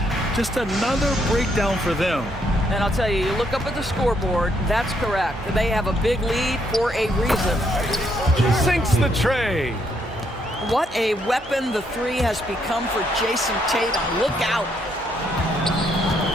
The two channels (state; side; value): normal; both; correlation 0.73